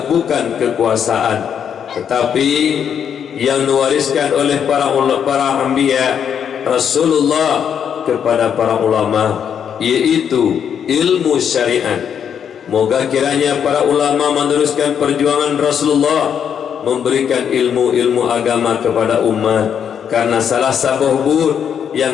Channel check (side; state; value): right; quieter; 8.1 dB